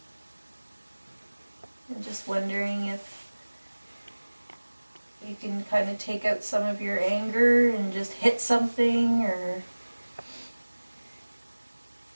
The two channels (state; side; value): inverted; both; correlation -1.00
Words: And just wondering if you can kind of take out some of your anger and just hit something, or